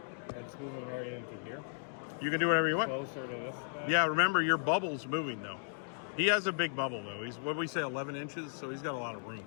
I just move him right into here. You can do whatever you want. Closer to this guy. Yeah, remember your bubble's moving though. He has a big bubble though. He's what we say 11 inches, so he's got a lot of room.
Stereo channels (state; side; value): silent; right; digital silence